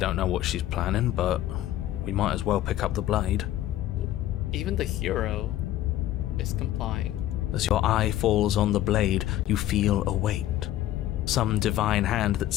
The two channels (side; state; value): right; quieter; 13.5 dB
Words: know what she's planning, but we might as well pick up the blade. Even the hero is complying. As your eye falls on the blade, you feel a weight. Some divine hand that